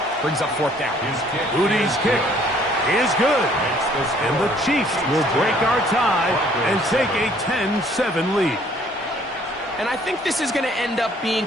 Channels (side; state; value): both; normal; correlation 0.60